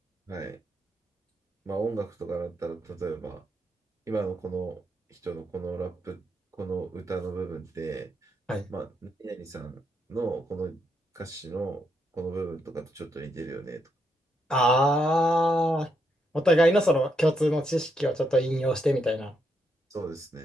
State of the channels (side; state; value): both; normal; correlation 0.79